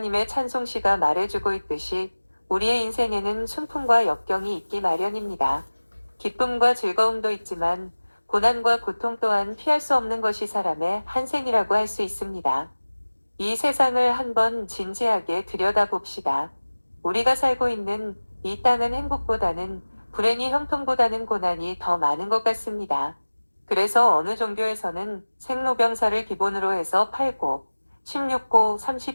찬송시가 말해주고 있듯이 우리의 인생에는 순풍과 역경이 있기 마련입니다. 기쁨과 즐거움도 있지만 고난과 고통 또한 피할 수 없는 것이 사람의 한생이라고 할 수 있습니다. 이 세상을 한번 진지하게 들여다봅시다. 우리가 살고 있는 이 땅은 행복보다는 불행이 형통보다는 고난이 더 많은 것 같습니다. 그래서 어느 종교에서는 생로병사를 기본으로 해서 8고, 16고,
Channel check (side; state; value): both; inverted; correlation -1.00